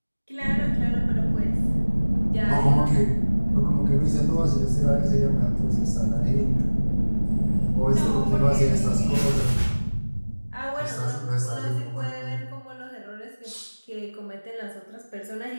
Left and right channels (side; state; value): both; inverted; correlation -1.00